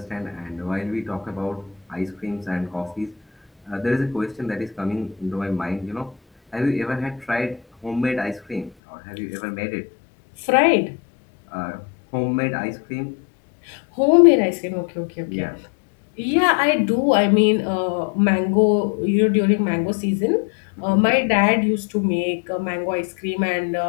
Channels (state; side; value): drops out; right; at 8.7 s